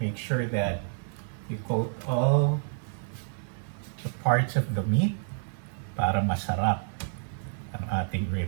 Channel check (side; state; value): left; silent; digital silence